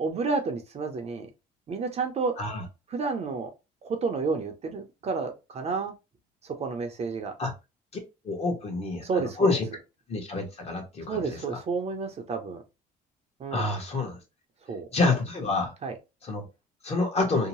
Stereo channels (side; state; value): both; normal; correlation 0.43